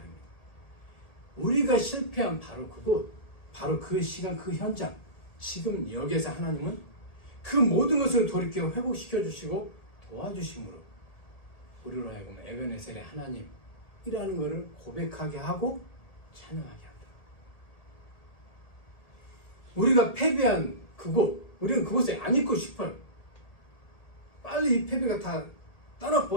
우리가 실패한 바로 그곳, 바로 그 시간, 그 현장, 지금 여기에서 하나님은 그 모든 것을 돌이켜 회복시켜 주시고 도와주심으로 우리로 하여금 에벤에셀의 하나님이라는 것을 고백하게 하고 찬양하게 한다. 우리가 패배한 그곳, 우리는 그곳에 안 있고 싶어요. 빨리 이 패배가 다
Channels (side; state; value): right; late; 1.8 ms